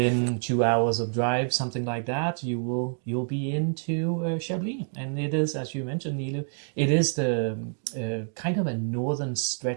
2 hours of drive, something like that, you'll be into Chablis, and it is, as you mentioned, Nilu, it is the kind of a northern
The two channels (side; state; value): left; silent; 60 dB below the other